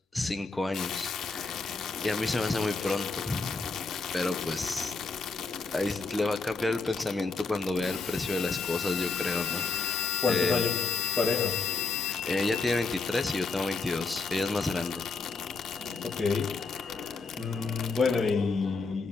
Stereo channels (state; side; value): quieter; right; 4.2 dB